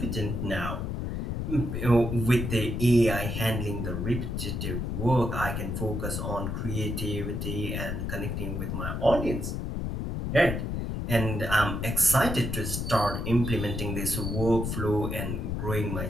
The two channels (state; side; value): noise; left; rumble, 3 dB below the sound